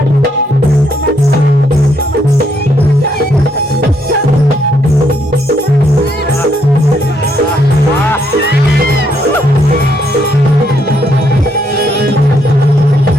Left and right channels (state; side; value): normal; both; correlation 0.73